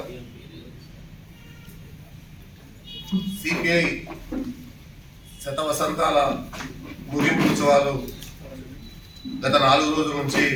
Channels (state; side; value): identical; both; correlation 1.00